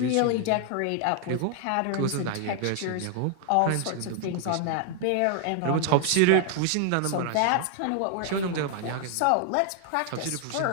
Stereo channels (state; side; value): different; both; correlation 0.00